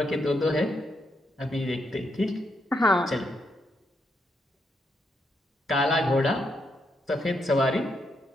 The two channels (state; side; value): normal; both; correlation 0.79